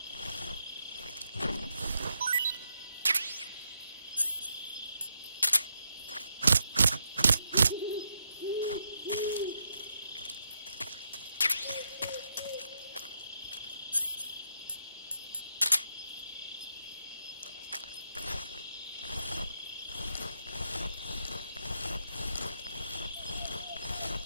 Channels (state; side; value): inverted; both; correlation -0.80